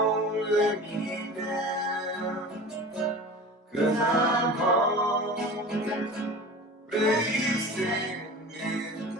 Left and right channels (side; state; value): both; normal; correlation 0.35